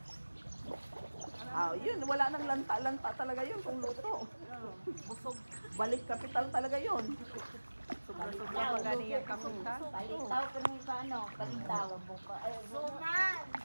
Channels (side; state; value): both; inverted; correlation -1.00